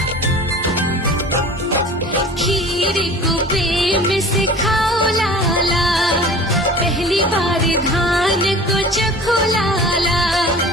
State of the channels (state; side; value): normal; both; correlation 0.41